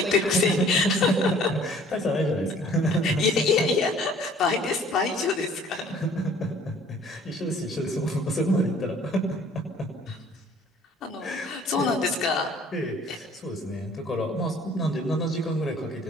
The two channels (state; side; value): normal; both; correlation 0.54